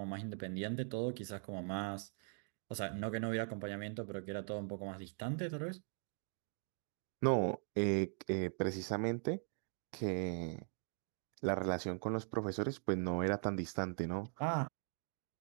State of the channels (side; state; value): left; silent; 50 dB below the other